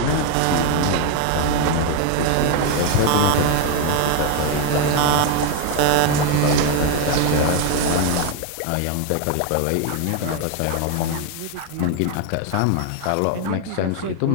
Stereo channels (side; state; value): both; different; correlation 0.01